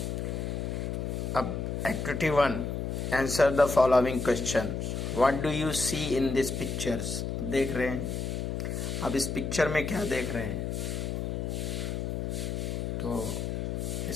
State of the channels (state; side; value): noise; left; hum, 2 dB below the sound